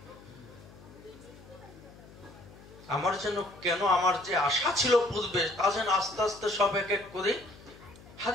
আমার যেন কেন আমার যে আশা ছিল পূর্বে, তা যেন আস্তে আস্তে সব এক এক করে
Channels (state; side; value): noise; left; hum, 20 dB below the sound